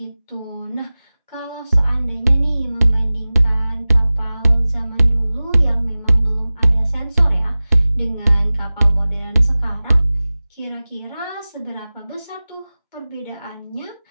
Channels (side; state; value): both; inverted; correlation -0.98